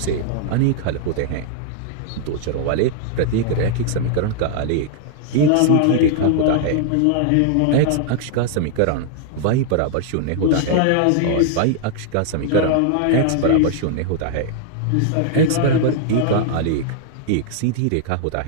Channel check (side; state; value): both; different; correlation -0.01